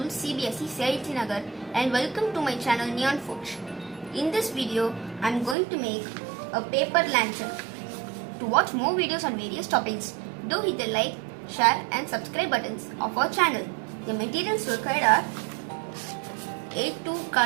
CBSE Saiti Nagar and welcome to my channel Neon Forge. In this video, I am going to make a paper lantern. To watch more videos on various topics, do hit the like, share and subscribe buttons of our channel. The materials required are A2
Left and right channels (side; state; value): left; drops out; at 5.6 s